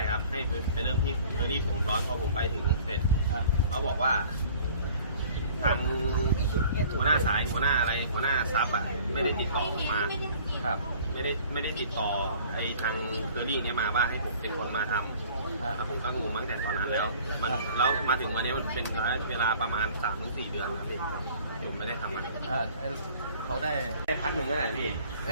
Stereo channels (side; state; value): both; inverted; correlation -0.50